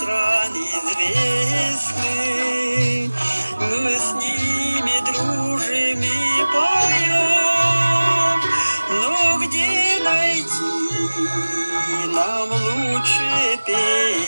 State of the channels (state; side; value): inverted; both; correlation -1.00